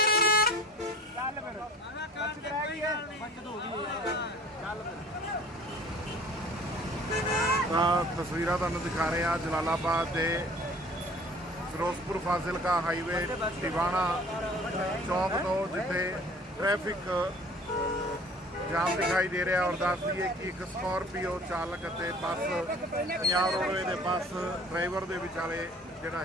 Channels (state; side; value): normal; both; correlation 0.49